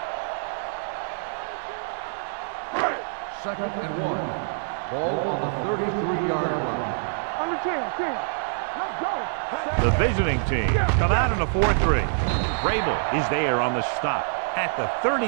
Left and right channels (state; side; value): silent; left; digital silence